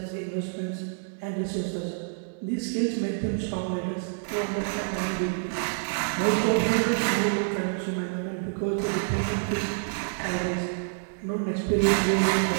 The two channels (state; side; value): silent; left; 60 dB below the other